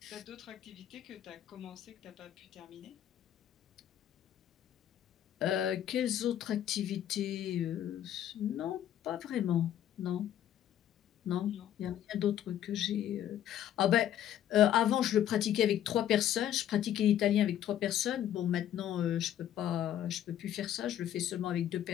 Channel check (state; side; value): quieter; right; 11.1 dB